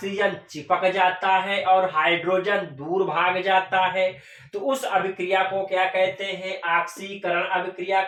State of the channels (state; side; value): identical; both; correlation 1.00